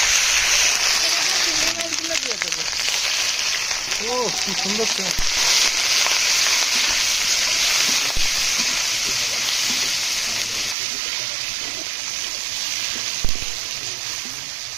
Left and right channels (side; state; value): left; drops out; at 10.8 s